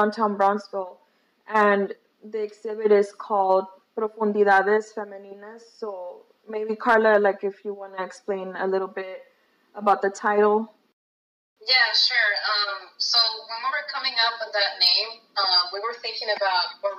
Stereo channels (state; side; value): identical; both; correlation 1.00